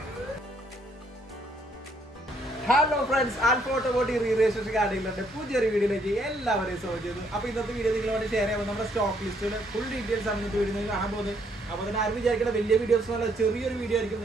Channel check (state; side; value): normal; both; correlation 0.69